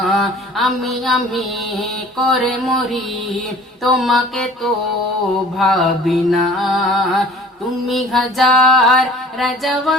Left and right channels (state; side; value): normal; both; correlation 0.48